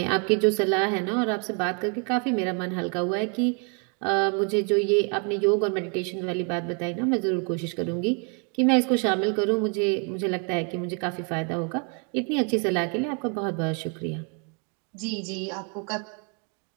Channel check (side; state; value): left; quieter; 37.4 dB